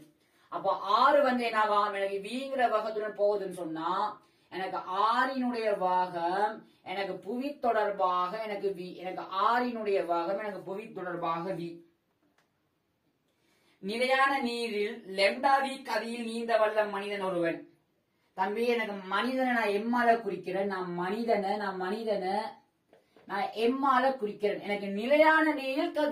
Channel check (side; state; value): both; identical; correlation 1.00